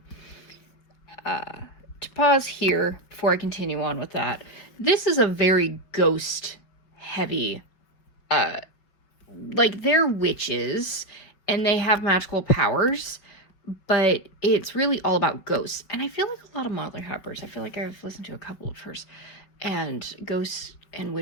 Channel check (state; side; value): late; right; 5.3 ms